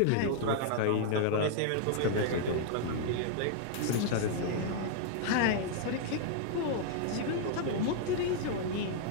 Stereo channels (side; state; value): both; different; correlation -0.01